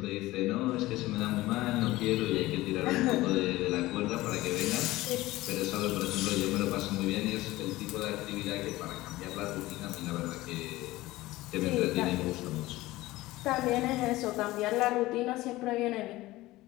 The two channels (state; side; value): quieter; right; 18.2 dB